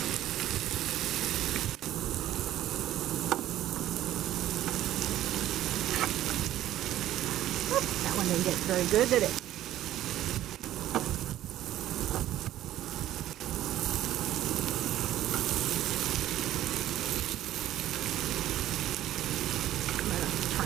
That one didn't get very good, did it? I'm going to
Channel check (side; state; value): left; quieter; 13.3 dB